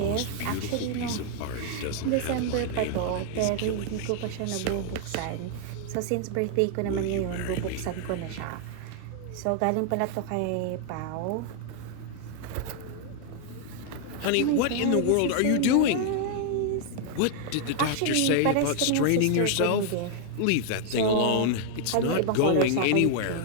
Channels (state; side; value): different; both; correlation 0.00